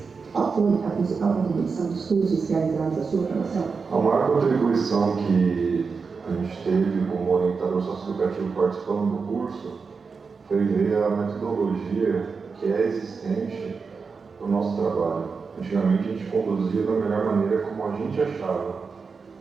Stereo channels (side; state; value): left; quieter; 5.0 dB